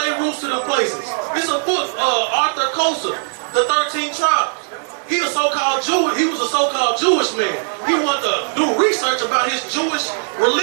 roots to them places. It's a book, Arthur Kosa, The 13 Tribes. he was a so-called Jewish man. He wanted to do research about his Jewish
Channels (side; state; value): left; silent; digital silence